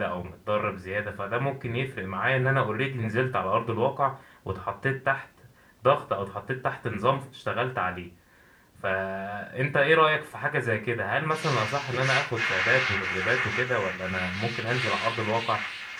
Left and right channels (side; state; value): both; identical; correlation 1.00